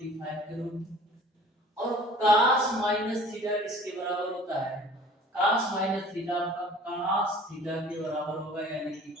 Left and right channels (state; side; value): normal; both; correlation 0.48